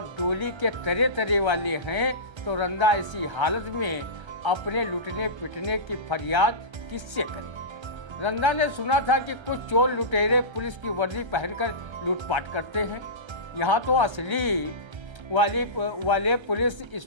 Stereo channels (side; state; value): left; late; 1.3 ms